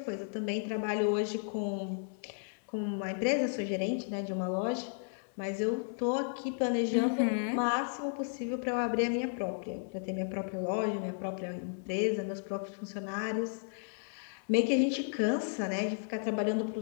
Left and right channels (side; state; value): right; silent; 55 dB below the other